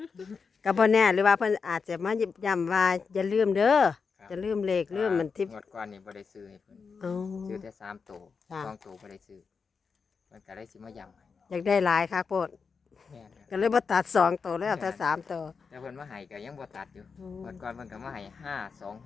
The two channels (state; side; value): quieter; right; 5.3 dB